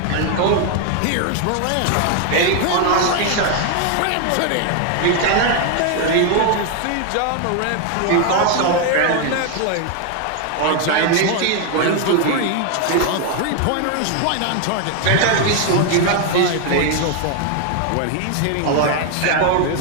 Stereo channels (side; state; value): both; different; correlation 0.00